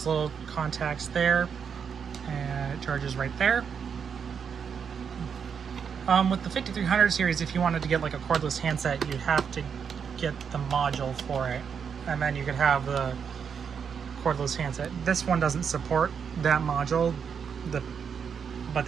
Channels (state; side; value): quieter; left; 6.9 dB